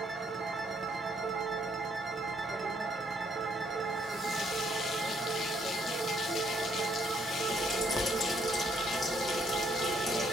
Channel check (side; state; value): both; normal; correlation 0.69